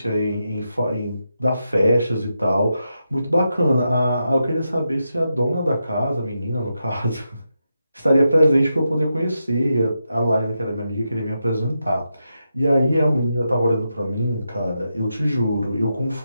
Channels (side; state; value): both; inverted; correlation -0.86